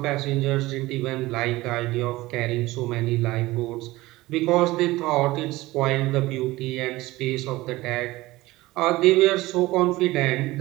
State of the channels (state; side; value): quieter; left; 19.0 dB